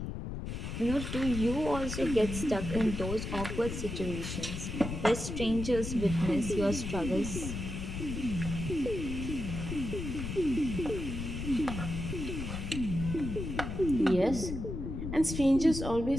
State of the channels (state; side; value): noise; left; rumble, 5 dB below the sound